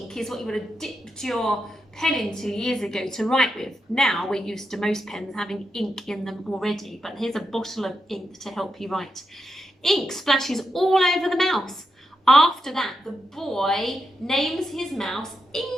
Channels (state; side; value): normal; both; correlation 0.85